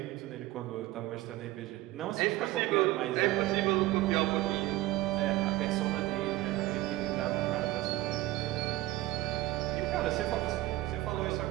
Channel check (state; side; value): quieter; left; 17.2 dB